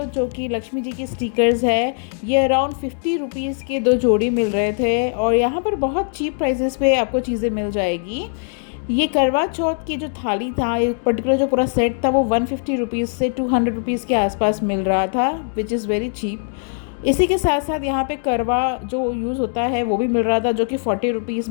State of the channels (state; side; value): silent; right; 65 dB below the other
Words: जो कि लक्ष्मी जी के स्टिकर्स है, ये अराउंड 50 रुपीज़ के 2 जोड़ी मिल रहे थे। और यहाँ पर बहुत चीप प्राइसेस पे आपको चीज़ें मिल जाएगी। ये करवा चौथ की जो थाली था, एक पर्टिकुलर जो पूरा सेट था, वो 150 रुपीज़ से 200 रुपीज़ के आसपास मिल रहा था, विच इज़ वेरी चीप। इसी के साथ साथ यहाँ पे करवा जो यूज़ होता है वो भी मिल रहा था, जो कि 40 रुपीज़